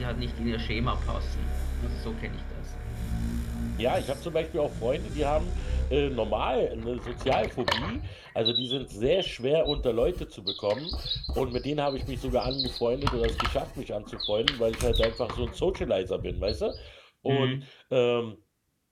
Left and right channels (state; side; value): identical; both; correlation 1.00